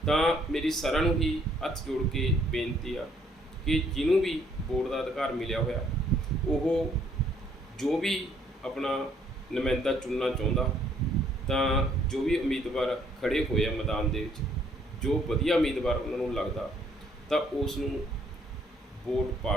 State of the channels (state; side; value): normal; both; correlation 0.65